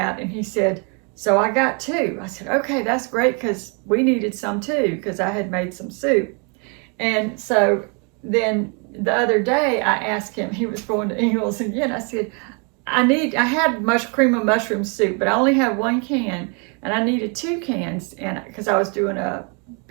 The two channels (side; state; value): left; quieter; 35.8 dB